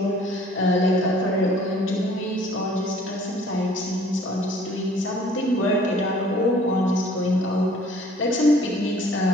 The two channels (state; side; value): normal; both; correlation 0.54